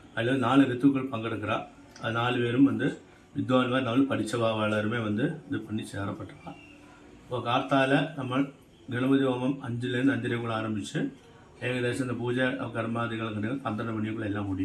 அதில் 4 ரித்துக்கள் பங்கெடுக்கிறா. அது 4 பேரும் வித்வான்மார் 4 படித்தவா எல்லாருமே இது பண்ணி சேரப்பட்டிருக்கான். இப்போ கார்த்தால நம்ம கணபதி ஹோமம் 5லேருந்து 5:30 ஆரம்பித்து ஏகദേശம் இந்த பூஜை கர்மாதிகள் 12 மணிக்குள்ளே எல்லாம்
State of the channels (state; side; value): identical; both; correlation 1.00